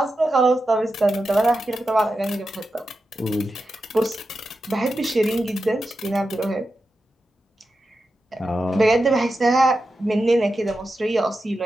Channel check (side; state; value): both; normal; correlation 0.90